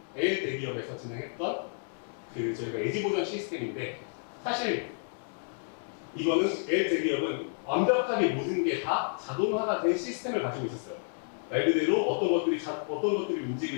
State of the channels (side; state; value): right; silent; digital silence